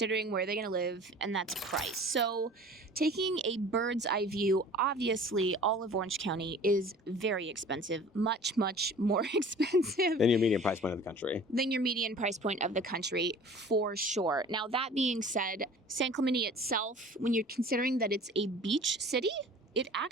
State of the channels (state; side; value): normal; both; correlation 0.44